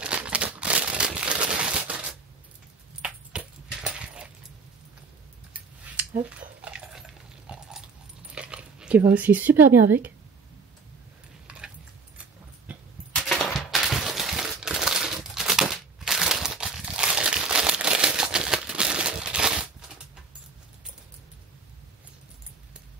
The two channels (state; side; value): quieter; left; 4.5 dB